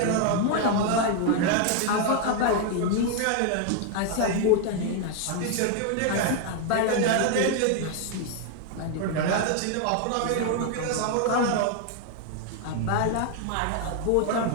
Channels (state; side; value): different; both; correlation 0.00